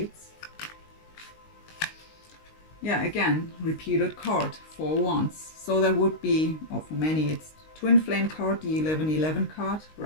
Yeah, again, repeated card, 4 wands. So that would be, or for many, it's twin flame card, the 1111 card,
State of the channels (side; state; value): right; late; 19 ms